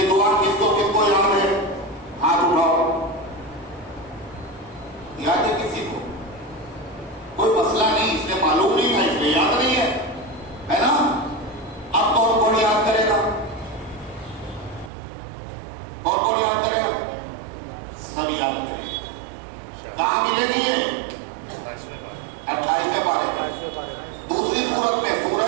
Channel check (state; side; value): drops out; left; at 14.9 s